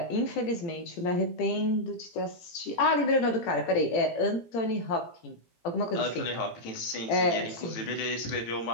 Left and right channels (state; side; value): late; right; 18 ms